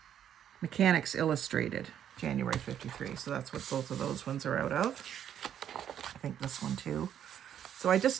Mechanics Illustrated, January 53. So that's what both of those ones are out of. I think this one too. So I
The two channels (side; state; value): left; quieter; 9.8 dB